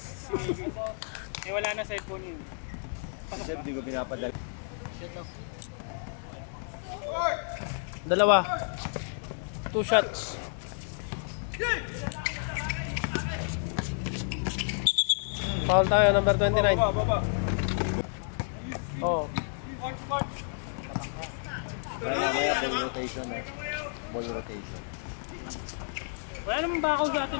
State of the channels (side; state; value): right; silent; digital silence